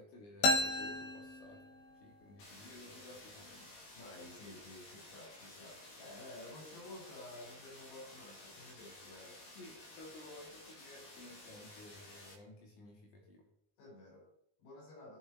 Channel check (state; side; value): late; right; 19 ms